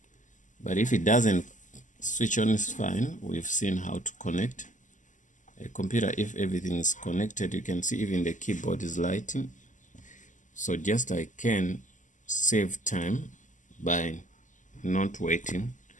But if it doesn't switch on, is fine. We've seen how to connect a computer. If everything is connected, you can see even the keyboard is lighting. So just I can save time by not waiting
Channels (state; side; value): late; right; 0.37 ms